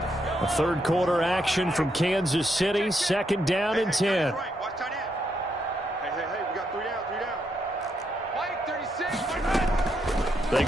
A 3rd quarter action from Kansas City. 2nd down and 10. They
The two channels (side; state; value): both; normal; correlation 0.78